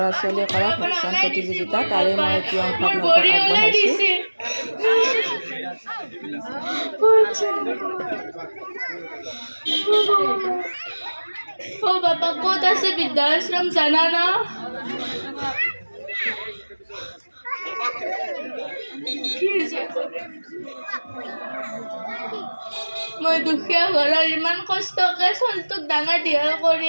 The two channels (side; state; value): both; inverted; correlation -1.00